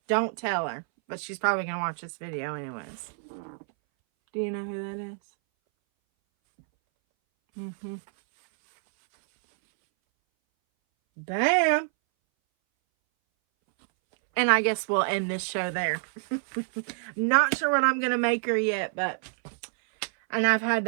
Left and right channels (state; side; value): silent; left; 60 dB below the other